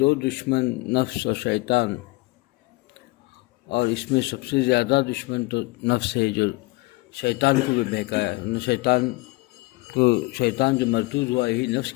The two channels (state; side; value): quieter; right; 23.7 dB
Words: دو دشمن نفس اور شیطان، اور اس میں سب سے زیادہ دشمن تو نفس ہے، جو شیطان کو جو بہکایا۔ شیطان جو مردود ہوا یہی نفس